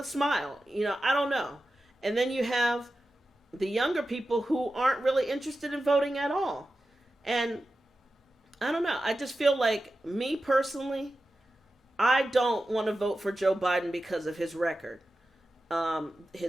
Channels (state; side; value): normal; both; correlation 0.93